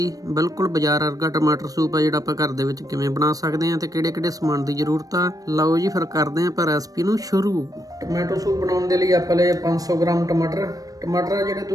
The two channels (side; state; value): left; late; 0.18 ms